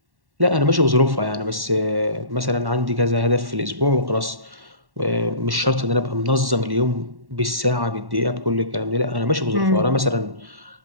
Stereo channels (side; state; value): left; late; 1.1 ms